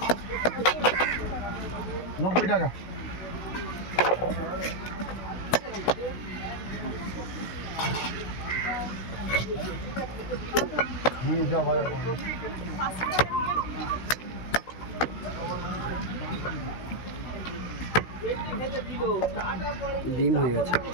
90 টাকা। যাও বাজারে। ডিম হয়ে গেছে,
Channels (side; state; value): right; late; 16 ms